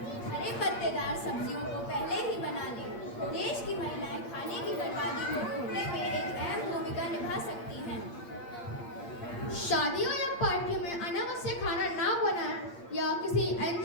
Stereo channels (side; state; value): right; late; 8.6 ms